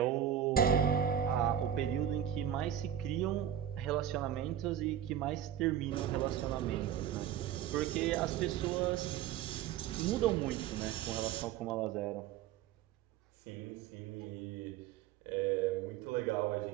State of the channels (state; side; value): quieter; left; 10.1 dB